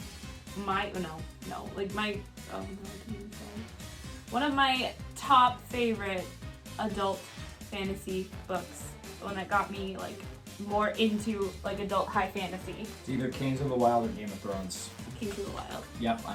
my one of my top favorite adult fantasy books. The one that got me like more into like adult high fantasy. It's either Kings of the Wild or Game of Thrones. Kings of the Wild. Yep,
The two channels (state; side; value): identical; both; correlation 1.00